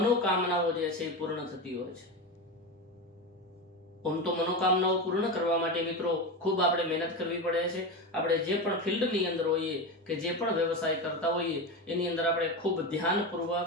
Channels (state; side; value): normal; both; correlation 0.19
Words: જે છે પૂર્ણ થતી હોય છે। આમ તો મનોકામનાઓ પૂર્ણ કરવા માટે મિત્રો ખૂબ આપણે મહેનત કરવી પડે છે। આપણે જે પણ ફિલ્ડની અંદર હોઈએ કે જે પણ વ્યવસાય કરતા હોઈએ એની અંદર આપણે ખૂબ